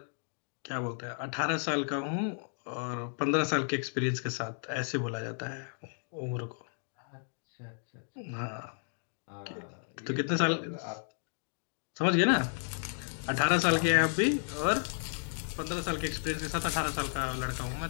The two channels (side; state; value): right; silent; digital silence